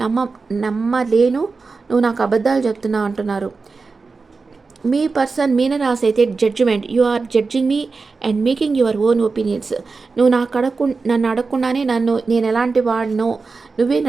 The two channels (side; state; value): left; quieter; 4.3 dB